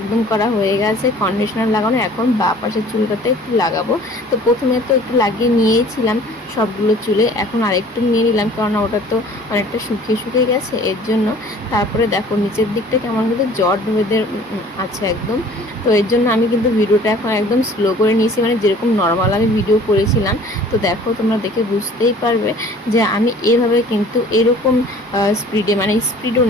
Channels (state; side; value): normal; both; correlation 0.50